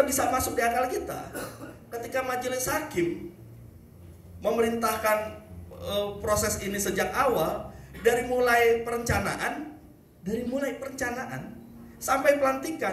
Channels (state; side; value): identical; both; correlation 1.00